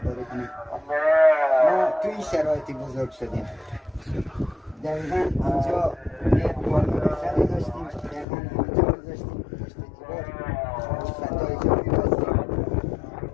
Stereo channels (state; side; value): drops out; right; at 8.2 s